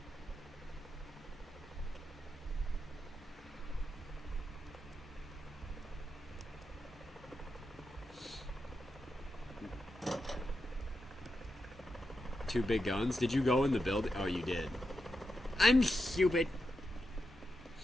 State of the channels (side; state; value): both; normal; correlation 0.87